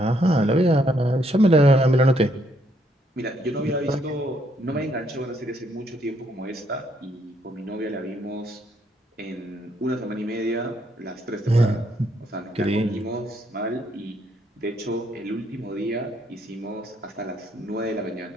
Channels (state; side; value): normal; both; correlation 0.72